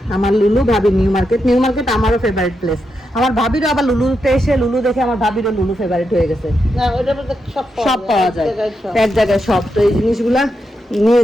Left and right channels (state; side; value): normal; both; correlation 0.85